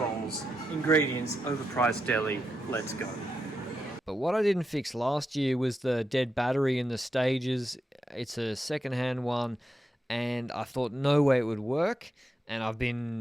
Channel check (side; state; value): both; normal; correlation 0.86